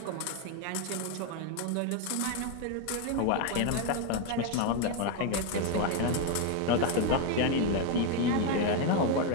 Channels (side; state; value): both; different; correlation 0.01